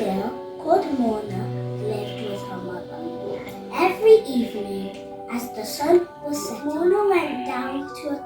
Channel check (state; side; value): identical; both; correlation 1.00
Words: called Mona lived with her mother. Every evening, as the sun was setting, Mona went down to a